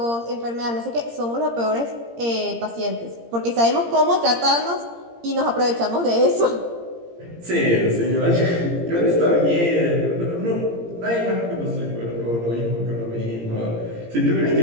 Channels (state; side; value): late; left; 17 ms